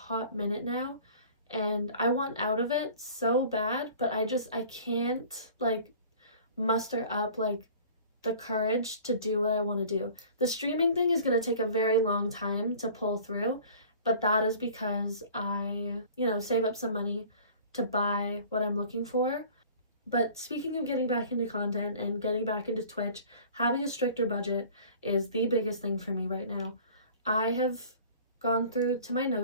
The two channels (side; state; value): both; inverted; correlation -0.47